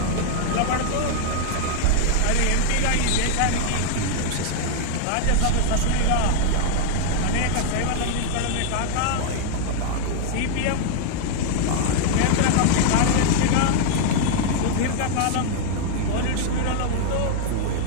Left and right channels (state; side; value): different; both; correlation 0.00